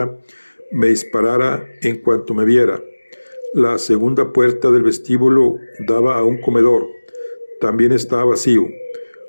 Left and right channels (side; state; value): both; inverted; correlation -1.00